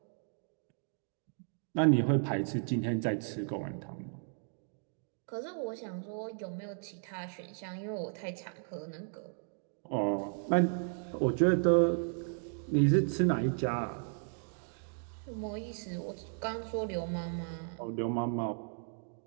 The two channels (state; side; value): silent; left; 55 dB below the other